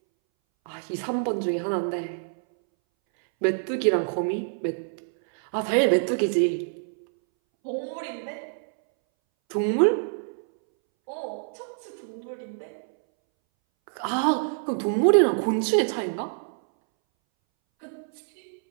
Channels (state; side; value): silent; left; 61 dB below the other